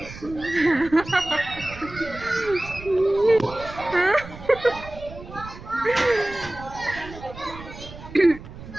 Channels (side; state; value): right; noise; rumble, 15 dB below the sound